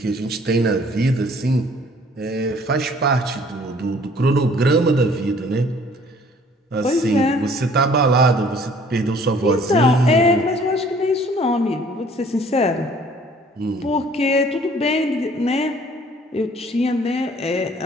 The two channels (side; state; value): both; normal; correlation 0.56